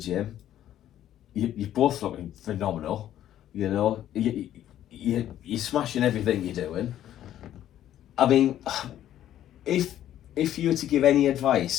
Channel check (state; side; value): quieter; right; 11.8 dB